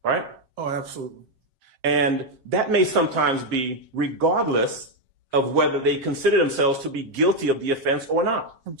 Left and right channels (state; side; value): late; left; 7.5 ms